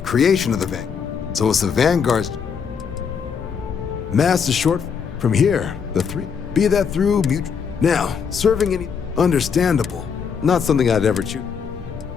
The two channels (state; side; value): quieter; right; 6.5 dB